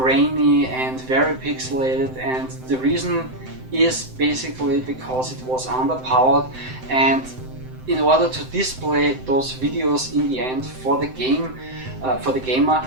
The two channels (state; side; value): late; left; 7.8 ms